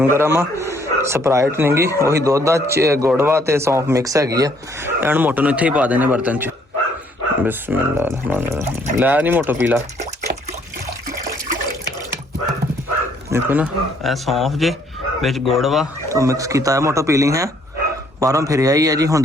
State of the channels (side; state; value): both; normal; correlation 0.65